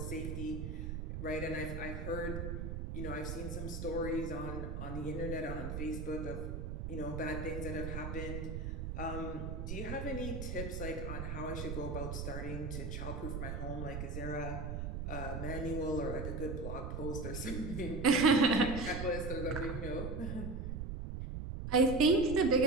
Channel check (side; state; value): right; noise; rumble, 4 dB below the sound